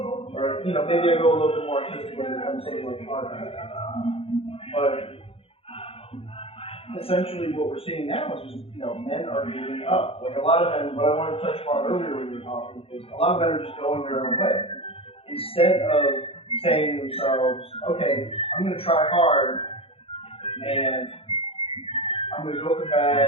Or, maybe I go a little bit more artistic and become something like an architect. But essentially what we're seeing now is just, men are giving up. Like a lot of men, what I wanted to touch upon earlier when you were talking is a lot of men are just going their own way. Instead of saying to themselves, okay, I'm going to try hard and I'm going to go for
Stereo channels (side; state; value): right; late; 0.27 ms